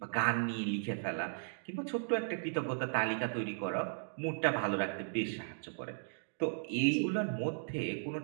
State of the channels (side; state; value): left; silent; digital silence